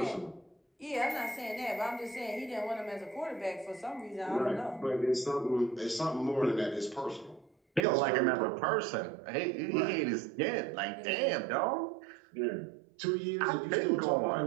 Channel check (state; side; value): drops out; left; at 7.8 s